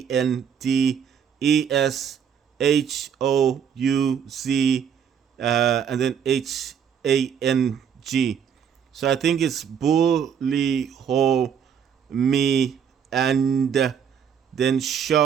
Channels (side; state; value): left; quieter; 7.8 dB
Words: and then HANG. So I think it's Bully Ho Me and then